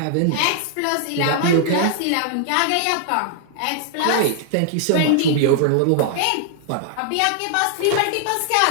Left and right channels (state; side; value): different; both; correlation -0.01